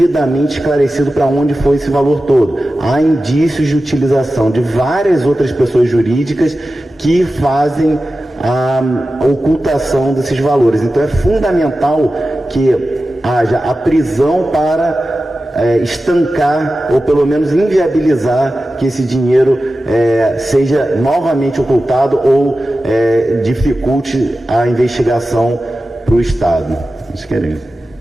esclarecido para onde foi esse valor todo. Há indícios de utilização de várias outras pessoas jurídicas que fazem a ocultação desses valores. Então é fundamental que haja a prisão para estancar, ou pelo menos inviabilizar, que esse dinheiro seja novamente ocultado ou dificulte a investigação para o Estado. Isso queremos.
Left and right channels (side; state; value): both; normal; correlation 0.94